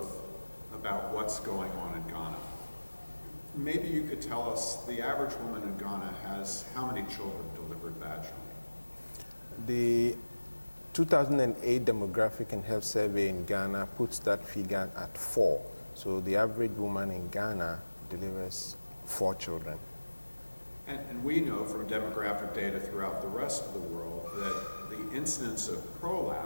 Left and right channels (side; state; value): both; inverted; correlation -1.00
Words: about what's going on in Ghana. Maybe you could tell us, the average woman in Ghana has how many children delivered vaginally? The 2008 Demographic and Health Survey in Ghana puts that figure at 4. So the average woman in Ghana delivers 4 children. And we know from demographic data throughout the rest of the world that the incidence of